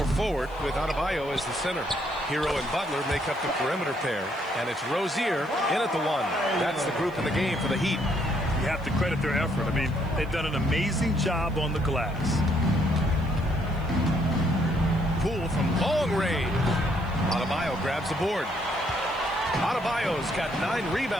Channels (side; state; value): left; noise; hiss, 28 dB below the sound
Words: forward with Adebayo as the center. Hero and Butler make up the perimeter pair, and it's Rozier in at the one. That's the group in the game for the Heat. You have to credit their effort. I mean, they've done an amazing job on the glass. Poole from long range. Adebayo grabs the board. Adebayo's got 9